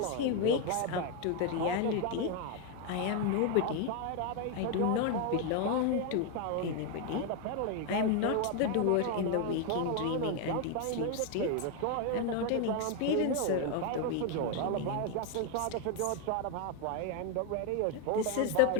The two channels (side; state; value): both; different; correlation 0.01